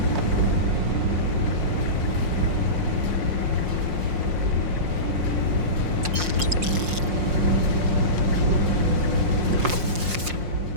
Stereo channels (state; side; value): late; left; 5.6 ms